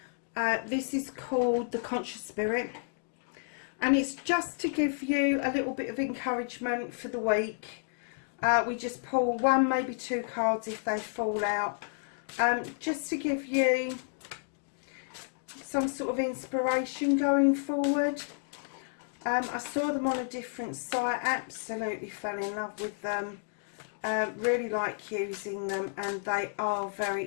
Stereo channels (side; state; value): right; silent; digital silence